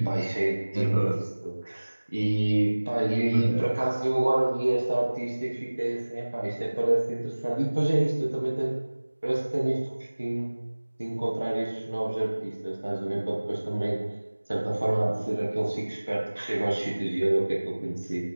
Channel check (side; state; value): both; inverted; correlation -1.00